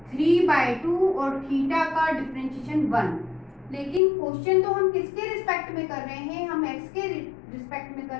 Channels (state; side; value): drops out; right; at 4.0 s